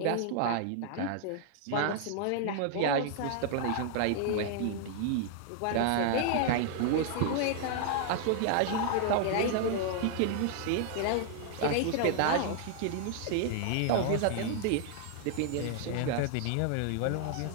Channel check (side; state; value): both; different; correlation 0.00